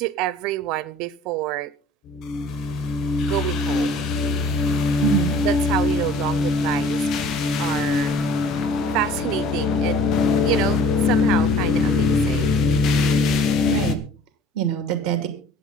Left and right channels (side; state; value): both; normal; correlation 0.50